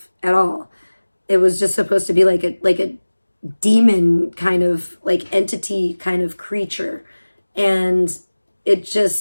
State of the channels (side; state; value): both; inverted; correlation -1.00